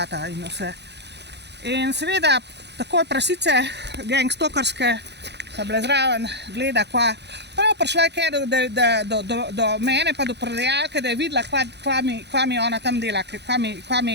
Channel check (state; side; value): late; left; 0.50 ms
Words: in vse. In seveda, takoj prasice gangstokerske so bile zraven, gleda, prav prišla je do mene pa do prodajalke, da je videla, kva mi ona tam dela, kva